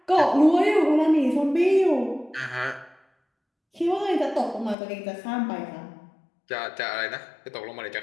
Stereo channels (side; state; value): right; drops out; at 4.8 s